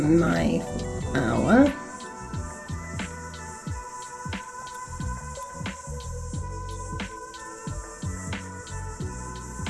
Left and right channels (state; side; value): identical; both; correlation 1.00